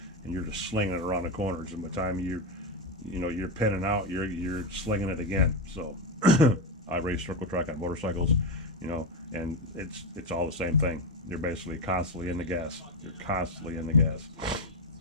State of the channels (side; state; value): both; normal; correlation 0.10